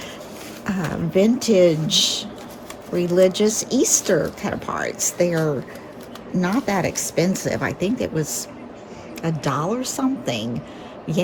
vintage religious Easter cut-aparts. They're not that expensive. I think it was $1 something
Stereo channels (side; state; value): both; identical; correlation 1.00